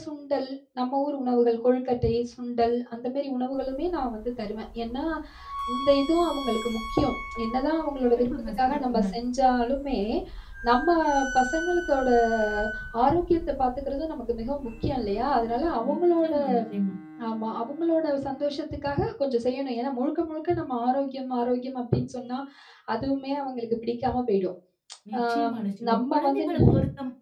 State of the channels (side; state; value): both; identical; correlation 1.00